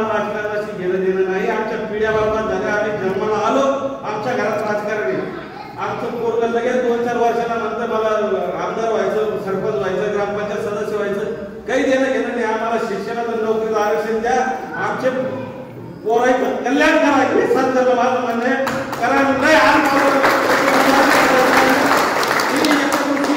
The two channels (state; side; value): identical; both; correlation 1.00